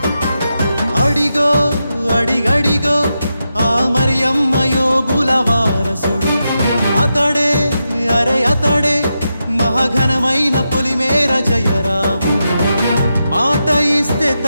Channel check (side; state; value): both; inverted; correlation -0.87